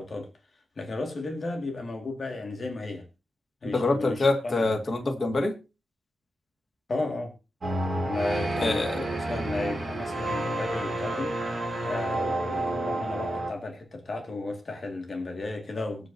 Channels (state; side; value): normal; both; correlation 0.89